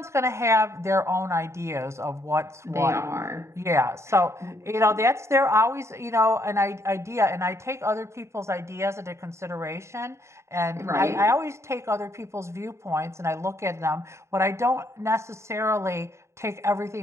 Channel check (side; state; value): left; late; 0.14 ms